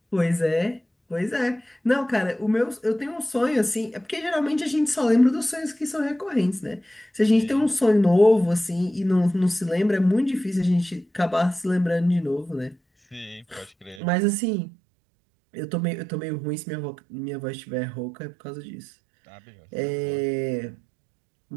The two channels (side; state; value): left; drops out; at 14.0 s